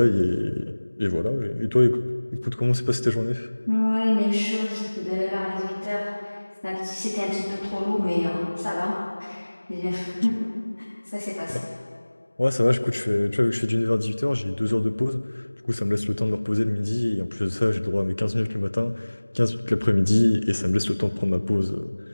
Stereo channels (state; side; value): inverted; both; correlation -1.00